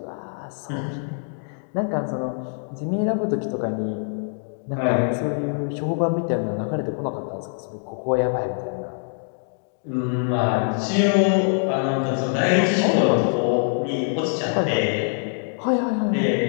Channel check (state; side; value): silent; right; digital silence